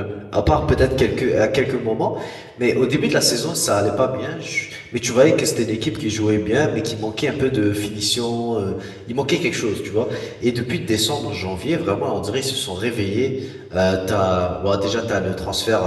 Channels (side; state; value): both; identical; correlation 1.00